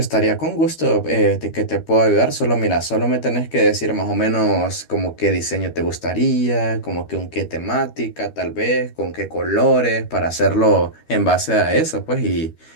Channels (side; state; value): right; late; 13 ms